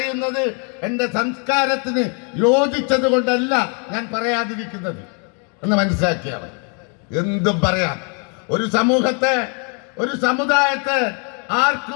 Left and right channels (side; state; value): right; quieter; 37.8 dB